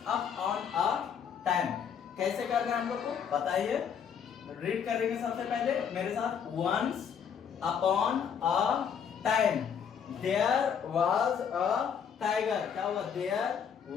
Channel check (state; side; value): quieter; right; 7.5 dB